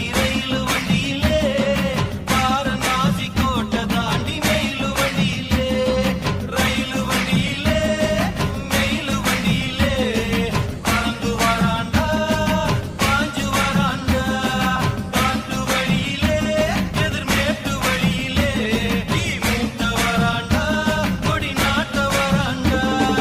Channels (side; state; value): both; identical; correlation 1.00